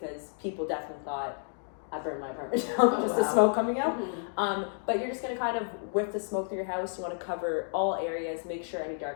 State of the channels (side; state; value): right; silent; digital silence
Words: people definitely thought I burned my apartment down just the smoke coming out. But you're just gonna kind of whiff the smoke through your house. You want to cover all areas, make sure any